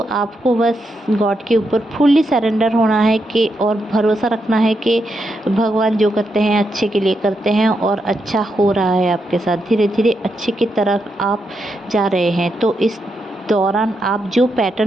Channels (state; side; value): normal; both; correlation 0.83